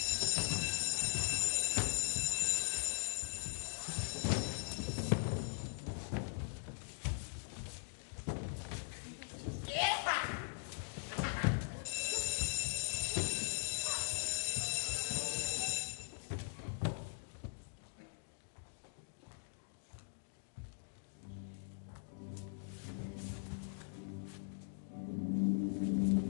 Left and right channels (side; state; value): right; silent; digital silence